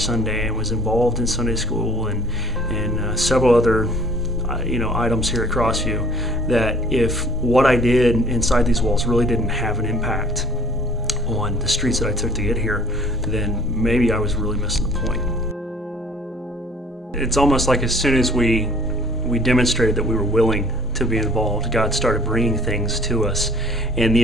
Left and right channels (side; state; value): both; normal; correlation 0.58